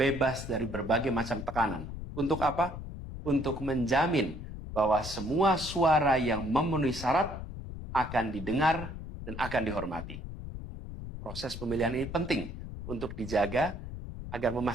dari berbagai macam tekanan. Untuk apa? Untuk menjamin bahwa semua suara yang memenuhi syarat akan didengar dan akan dihormati. Proses pemilihan ini penting untuk dijaga agar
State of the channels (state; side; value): noise; left; rumble, 9 dB below the sound